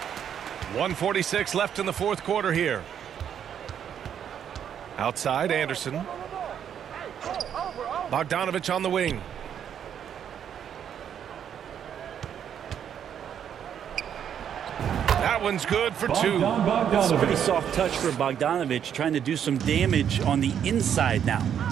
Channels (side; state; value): left; quieter; 8.8 dB